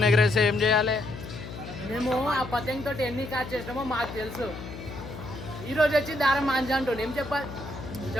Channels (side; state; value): left; noise; hum, 11 dB below the sound